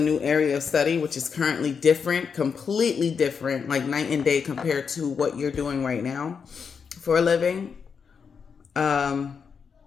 new area of study, which is currently different, completely different, like night and day compared to what you're doing right now for a living. Um,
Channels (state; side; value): quieter; right; 6.2 dB